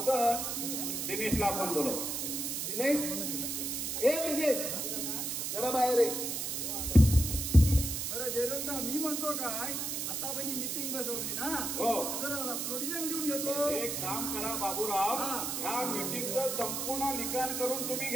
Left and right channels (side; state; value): right; noise; hiss, 2 dB below the sound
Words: दिनेशला आपण बोलव. दिनेश, ए दिनेश, जरा बाहेर ये. बरं जयरामराव, मी म्हणतो काय, आता पण मीटिंग बसवली ना, हो. जरा प्रोडिजन देऊन घेतो. एक काम करा बाबूराव, ह्या मीटिंगचं संपूर्ण लिखाण करून तुम्ही